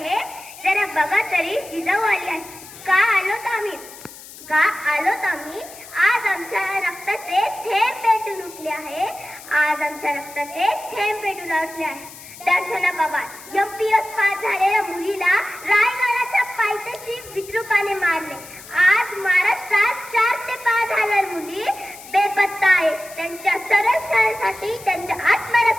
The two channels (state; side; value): noise; left; hiss, 17 dB below the sound